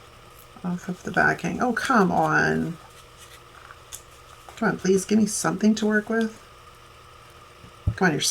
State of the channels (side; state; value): both; identical; correlation 1.00